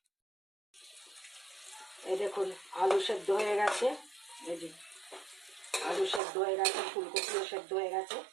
এই দেখুন, আলু সেদ্ধ হয়ে গেছে। এই যে আলু সেদ্ধ হয়ে গেছে, ফুলকপিও সেদ্ধ হয়ে গেছে।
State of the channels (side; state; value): left; drops out; at 6.2 s